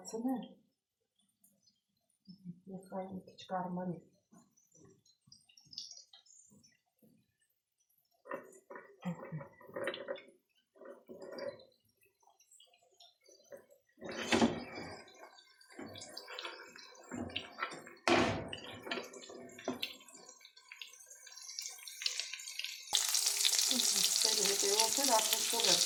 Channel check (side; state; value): both; identical; correlation 1.00